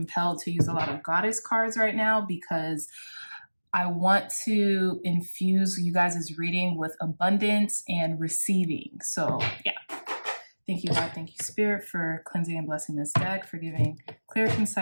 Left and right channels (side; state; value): both; inverted; correlation -1.00